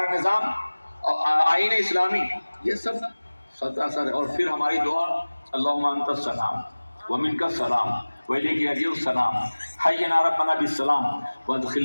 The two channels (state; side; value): inverted; both; correlation -1.00